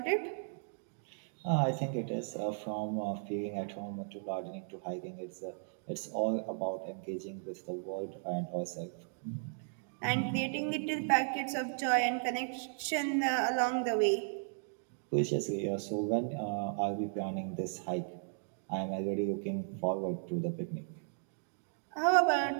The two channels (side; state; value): left; silent; digital silence